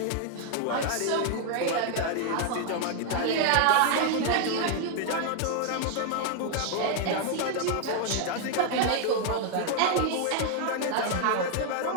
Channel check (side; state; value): both; different; correlation 0.00